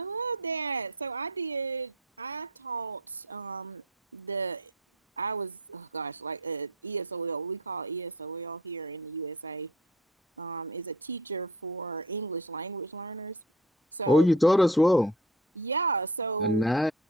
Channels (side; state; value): both; normal; correlation 0.41